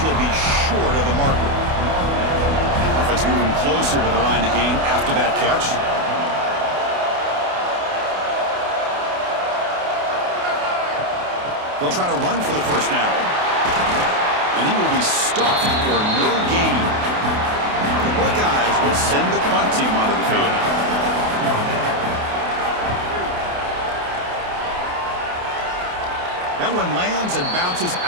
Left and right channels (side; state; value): left; late; 28 ms